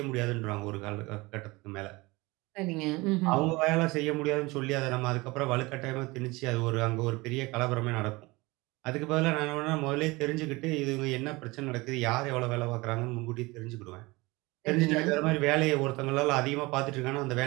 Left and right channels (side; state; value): left; quieter; 22.9 dB